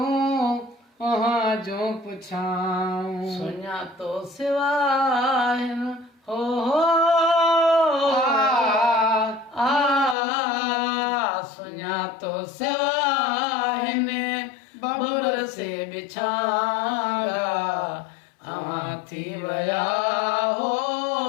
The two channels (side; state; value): right; drops out; at 10.2 s